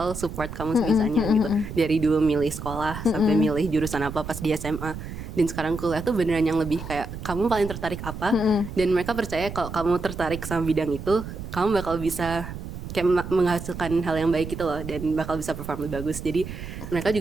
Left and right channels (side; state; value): right; noise; rumble, 9 dB below the sound